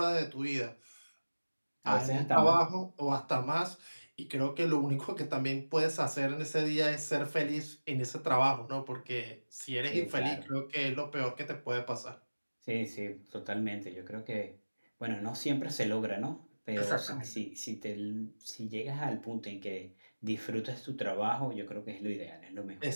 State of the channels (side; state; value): both; inverted; correlation -1.00